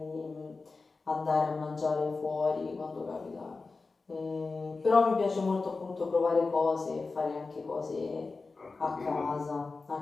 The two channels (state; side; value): quieter; right; 4.0 dB